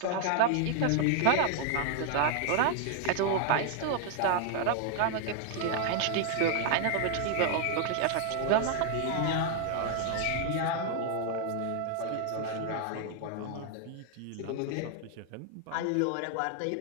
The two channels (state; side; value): different; both; correlation 0.00